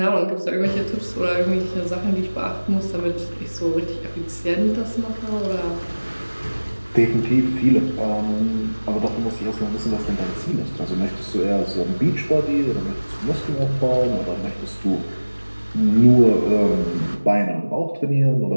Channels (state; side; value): inverted; both; correlation -1.00